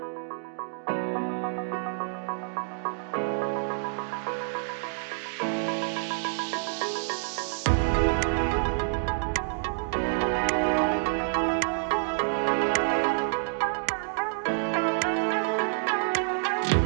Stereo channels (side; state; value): left; silent; digital silence